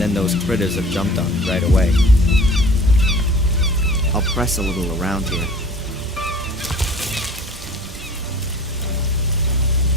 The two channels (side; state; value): both; normal; correlation 0.46